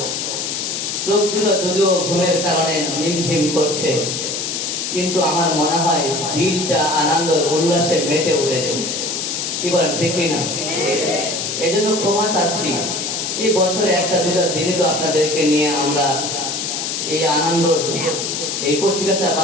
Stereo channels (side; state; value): left; noise; hiss, 3 dB below the sound